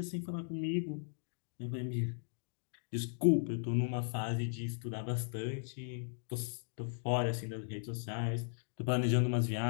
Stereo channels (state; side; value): silent; right; digital silence